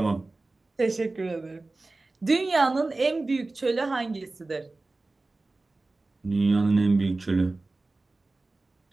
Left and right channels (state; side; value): quieter; left; 3.2 dB